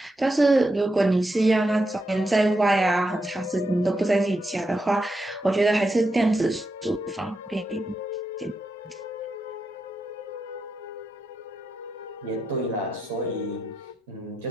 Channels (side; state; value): both; normal; correlation 0.85